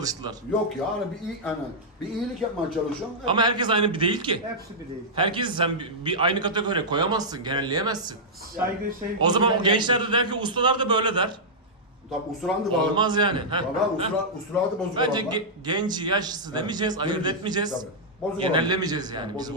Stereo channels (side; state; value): both; normal; correlation -0.09